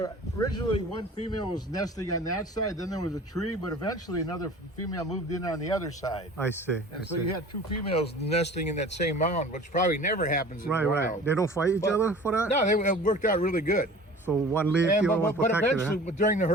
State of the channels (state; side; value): normal; both; correlation 0.43